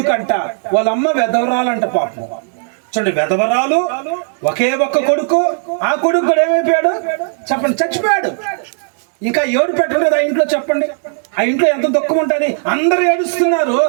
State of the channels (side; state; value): left; silent; digital silence